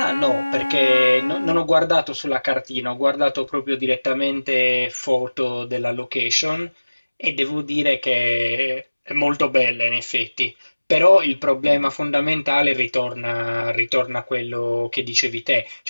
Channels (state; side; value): inverted; both; correlation -1.00